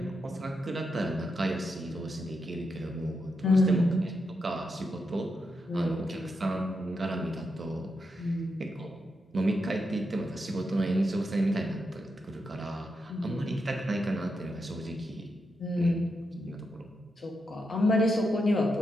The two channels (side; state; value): both; normal; correlation 0.84